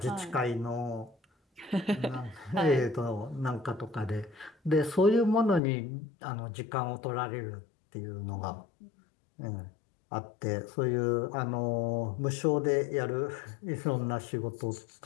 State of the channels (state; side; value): drops out; right; at 5.6 s